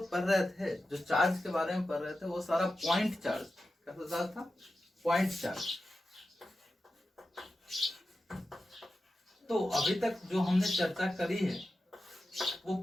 पढ़ रहे थे, जो चार्ज के बारे में पढ़ रहे थे, वो सारा पॉइंट चार्ज। कैसा चार्ज था? Point charge. तो अभी तक जो हमने चर्चा करी है वो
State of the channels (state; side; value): normal; both; correlation 0.92